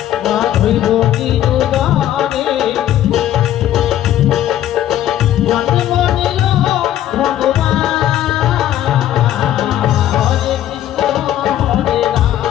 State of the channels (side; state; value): right; quieter; 12.2 dB